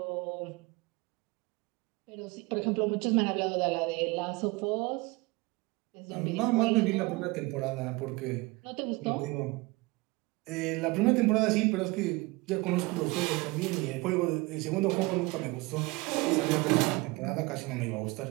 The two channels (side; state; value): left; quieter; 24.0 dB